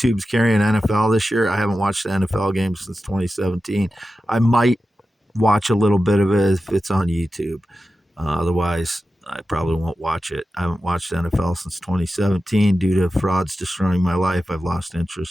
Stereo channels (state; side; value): normal; both; correlation 0.93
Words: carrying NFL this year. I haven't watched the NFL game since 2017. I might watch a little bit of it if it's on YouTube. Otherwise, I probably won't watch it. I haven't watched NFL since 2017 due to frauds destroying my life. I've lost